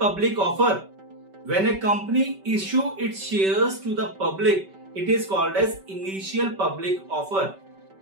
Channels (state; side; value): late; left; 5.2 ms